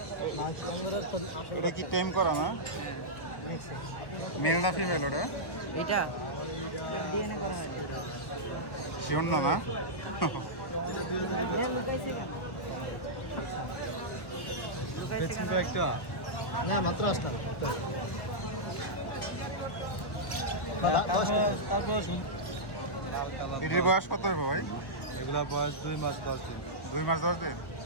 এটা কি টেম করা না? মেল না ফিমেল ওটা? এটা ডিএনএ করা হয়। শিওর না? না এটির বয়স কত হবে ভাই? এগুলা বয়স 2 মাস 10 দিন। 2 মাস 10 দিন।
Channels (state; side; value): late; right; 1.1 ms